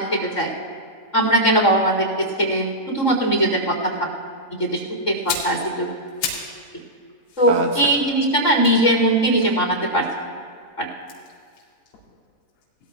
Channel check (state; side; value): late; right; 3.6 ms